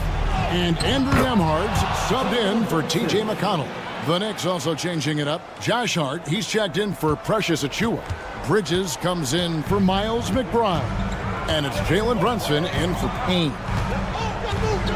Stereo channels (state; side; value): identical; both; correlation 1.00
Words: And Andrew Nembhard's subbed in for T.J. McConnell. The Knicks also changing it up. Josh Hart, he's checked in for Precious Achiuwa. Bridges comes in for Miles McBride. And it's Jalen Brunson in for Payne.